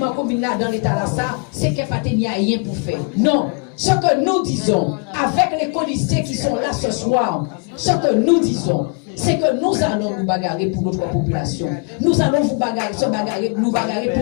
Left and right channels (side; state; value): right; quieter; 32.9 dB